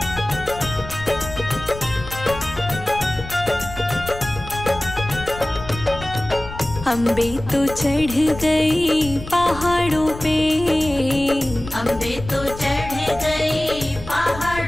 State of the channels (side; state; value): left; noise; rumble, 12 dB below the sound